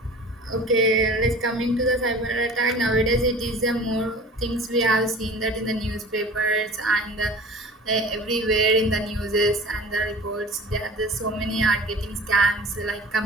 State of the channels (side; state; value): both; normal; correlation 0.42